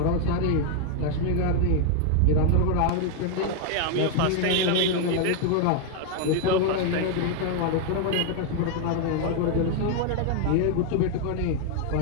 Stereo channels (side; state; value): both; different; correlation 0.00